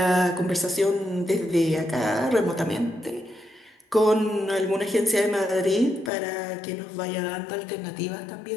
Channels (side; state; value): right; drops out; at 6.1 s